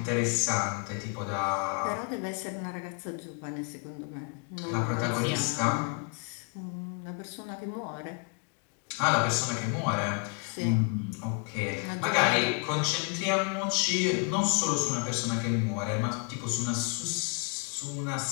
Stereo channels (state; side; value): quieter; right; 36.3 dB